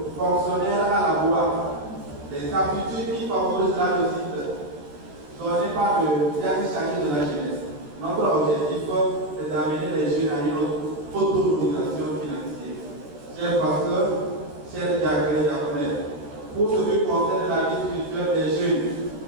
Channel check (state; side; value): late; left; 14 ms